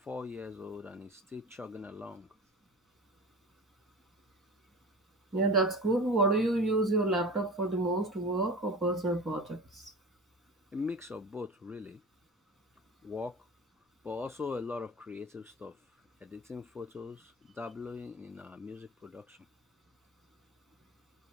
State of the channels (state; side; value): normal; both; correlation 0.33